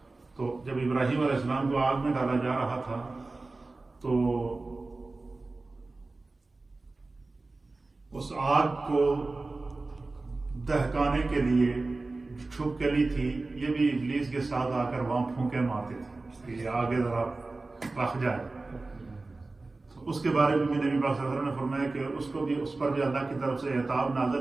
تو جب ابراہیم علیہ السلام کو آگ میں ڈالا جا رہا تھا تو اس آگ کو دہکانے کے لیے چھپکلی تھی، یہ بھی ابلیس کے ساتھ آ کر وہاں پھونکے مارتے تھے کہ یہ آگے ذرا رکھ جائے۔ تو اس کے بارے میں نبی پاک صلی اللہ علیہ وسلم نے فرمایا کہ اس پر بھی اللہ کی طرف سے عتاب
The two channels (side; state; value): left; quieter; 3.4 dB